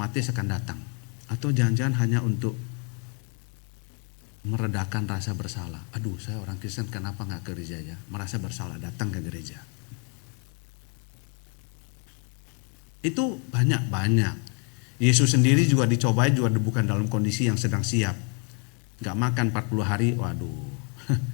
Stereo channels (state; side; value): quieter; right; 36.9 dB